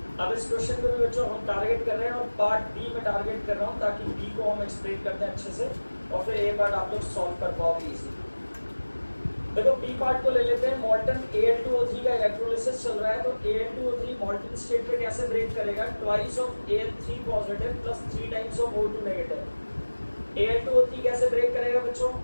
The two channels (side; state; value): both; inverted; correlation -1.00